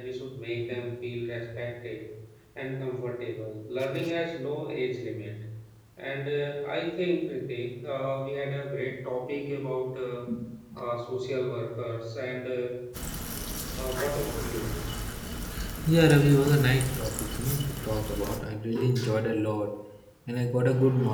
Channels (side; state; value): both; identical; correlation 1.00